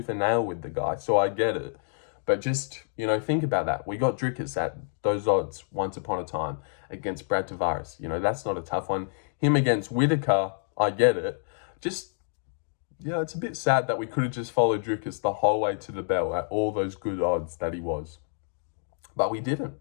and nail with the guy, so I get it. But just, think about that. We got Dricus at those odds once upon a time against Brad Tavares. That's not a tough one. Him against Whitaker, I get it. Just, it's a bit sad that we could have just followed Dricus the whole way to the bell at all those good odds that he was. But we didn't.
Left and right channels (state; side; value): silent; right; digital silence